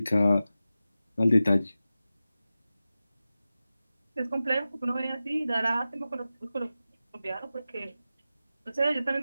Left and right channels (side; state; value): both; inverted; correlation -0.94